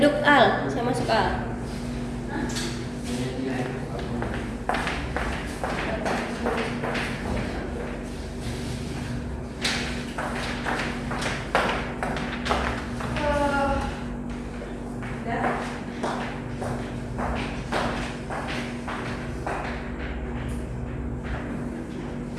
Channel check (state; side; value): identical; both; correlation 1.00